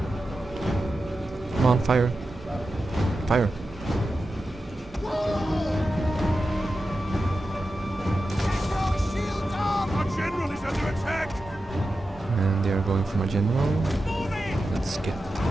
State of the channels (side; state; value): both; normal; correlation 0.91